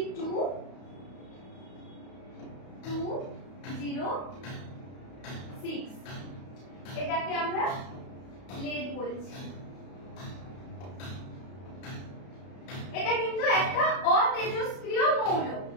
এটাকে আমরা লেড বলছি। এটা কিন্তু একটা অতেজস্ক্রিয় মৌল।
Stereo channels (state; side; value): late; right; 32 ms